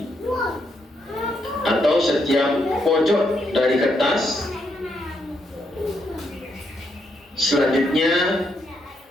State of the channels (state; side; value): normal; both; correlation 0.78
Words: atau setiap pojok dari kertas. Selanjutnya